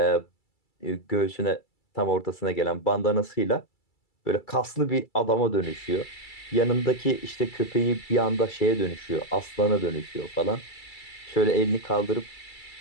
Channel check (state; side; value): late; right; 2.3 ms